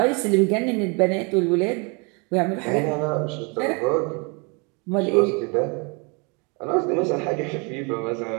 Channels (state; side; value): quieter; left; 32.1 dB